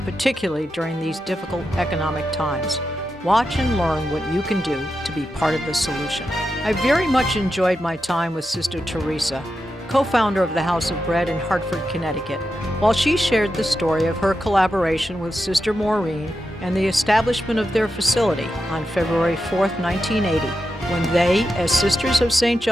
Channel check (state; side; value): normal; both; correlation 0.88